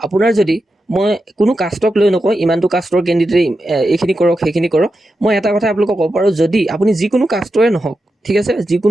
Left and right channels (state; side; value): normal; both; correlation 0.89